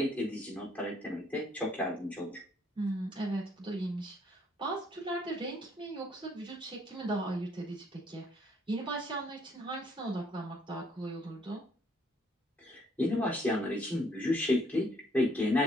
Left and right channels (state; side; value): normal; both; correlation 0.66